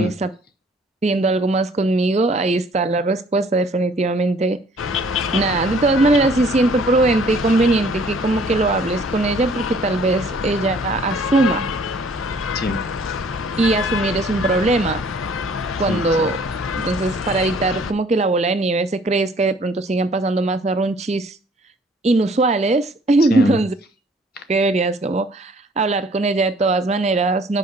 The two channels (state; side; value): normal; both; correlation 0.57